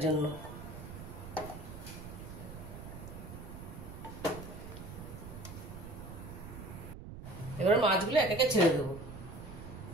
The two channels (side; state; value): right; noise; rumble, 11 dB below the sound